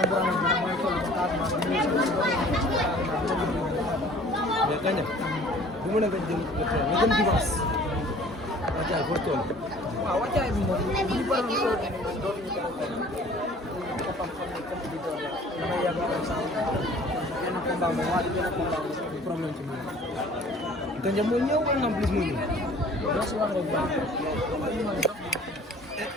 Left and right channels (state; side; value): normal; both; correlation 0.50